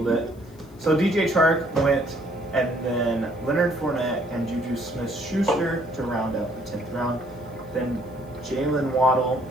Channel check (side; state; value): left; noise; hiss, 29 dB below the sound